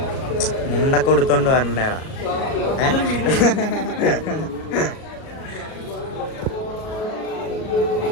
മുണ്ടൊക്കെ കൊടുത്തോണ്ട് വരണ്ടേടാ.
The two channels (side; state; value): right; late; 37 ms